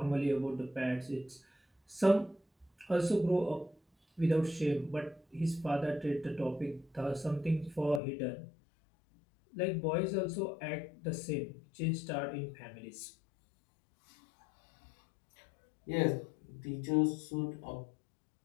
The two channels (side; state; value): right; drops out; at 8.0 s